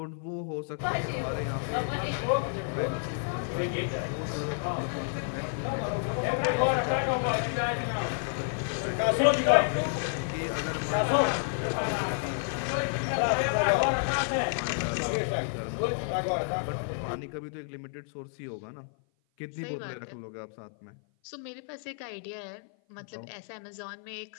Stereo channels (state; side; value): silent; right; 55 dB below the other